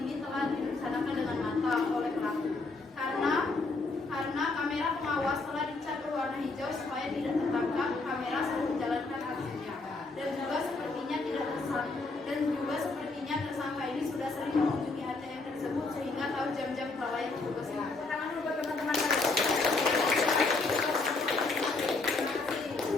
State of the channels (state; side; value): quieter; right; 3.6 dB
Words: telah direncanakan dengan matang oleh pelaku. Karena kamera pengawas telah dicat berwarna hijau supaya tidak tertangkap kamera saat menjalankan aksinya. Dan juga sepertinya tersangka ini sudah sering mengunjungi ATM tersebut sehingga tahu jam-jam kelalaian petugas ini. Tangan dulu buat teman-teman kalian.